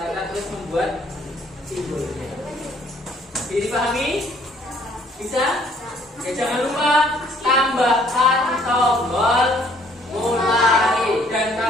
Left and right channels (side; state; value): both; normal; correlation 0.61